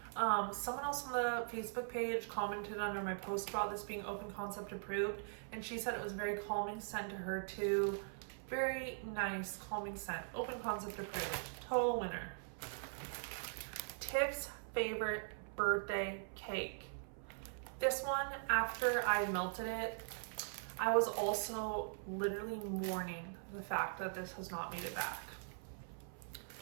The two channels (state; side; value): silent; left; 50 dB below the other